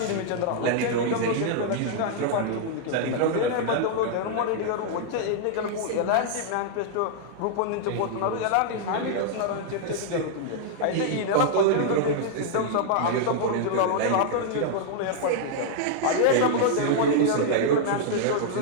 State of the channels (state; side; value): different; both; correlation -0.01